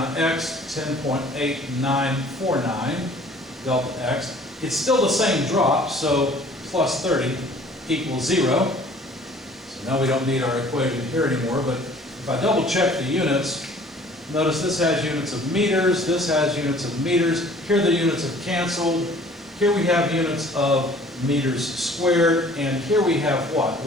x, 10.8949 delta x. It's still the same drop, so plus 30 equals 0. So now we don't need our equation here anymore, but if I double check the units, notice this has units of meters, this has units of meters. Here the units have canceled. Here we have units of meters squared, and here we have what?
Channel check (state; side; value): normal; both; correlation 0.52